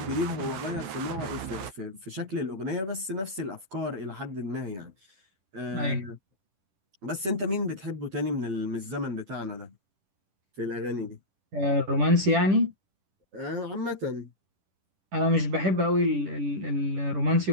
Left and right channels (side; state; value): left; late; 10 ms